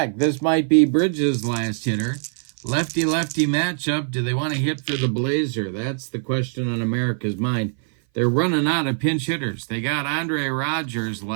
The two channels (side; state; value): left; silent; 59 dB below the other